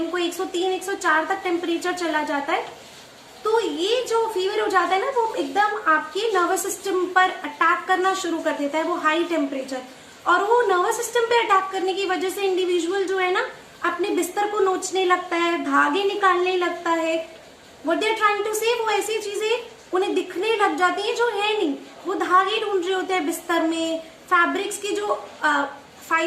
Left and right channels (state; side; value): identical; both; correlation 1.00